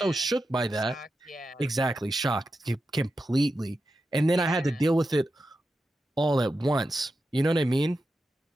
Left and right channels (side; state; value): both; normal; correlation 0.89